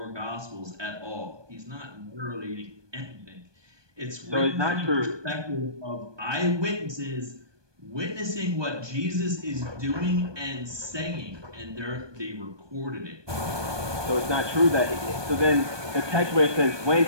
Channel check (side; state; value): left; late; 1.2 ms